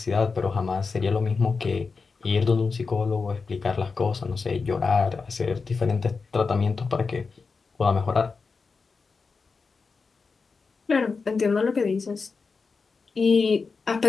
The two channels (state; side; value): quieter; right; 4.7 dB